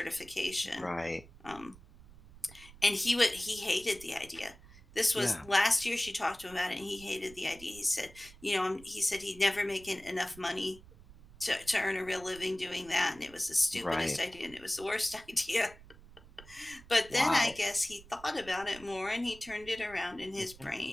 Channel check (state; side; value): noise; right; rumble, 21 dB below the sound